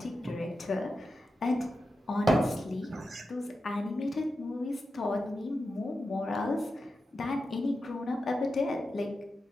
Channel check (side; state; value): both; normal; correlation 0.90